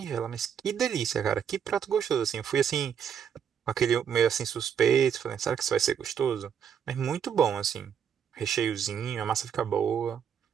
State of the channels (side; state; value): left; quieter; 8.0 dB